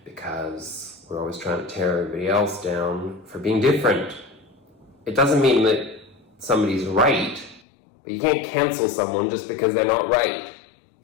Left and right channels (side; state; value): right; drops out; at 7.6 s